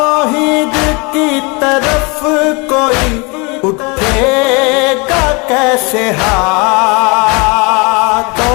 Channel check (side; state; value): right; quieter; 29.3 dB